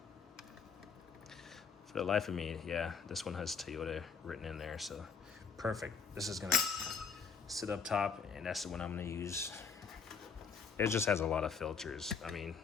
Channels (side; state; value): right; quieter; 5.8 dB